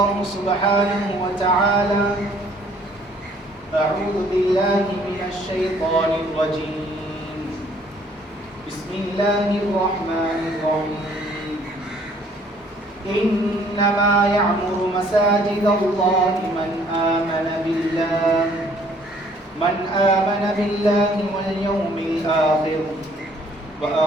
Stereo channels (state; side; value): normal; both; correlation 0.60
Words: سبحانه وتعالى أعوذ بالله من الشيطان الرجيم بسم الله الرحمن الرحيم إنما يعمر مساجد الله من آمن بالله واليوم الآخر